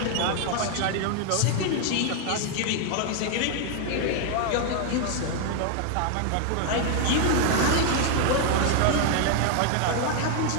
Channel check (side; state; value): both; different; correlation 0.00